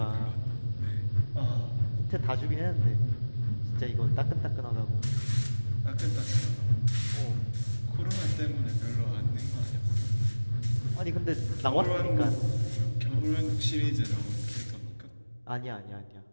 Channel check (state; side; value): inverted; both; correlation -1.00